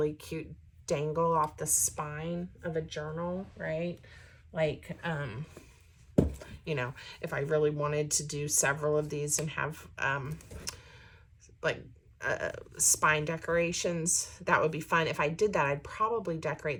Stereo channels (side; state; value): both; identical; correlation 1.00